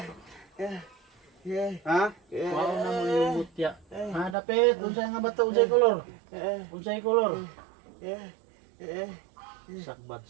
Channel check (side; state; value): left; drops out; at 4.4 s